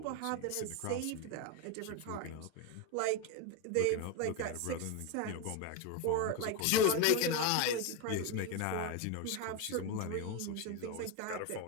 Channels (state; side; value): different; both; correlation 0.03